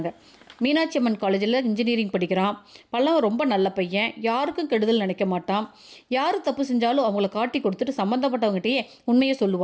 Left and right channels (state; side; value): identical; both; correlation 1.00